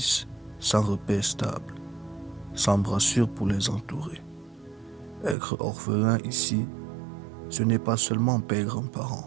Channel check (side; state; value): left; drops out; at 5.4 s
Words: sans repère stable, sans brassure pour les entourer. Être orphelin ici, ce n'est pas seulement perdre un